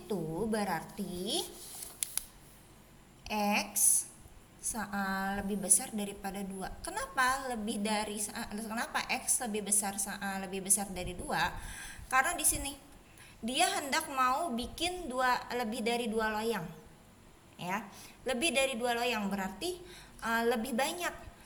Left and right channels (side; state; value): both; identical; correlation 1.00